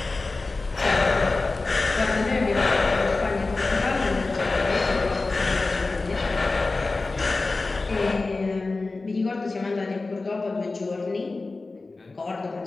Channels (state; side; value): quieter; right; 3.5 dB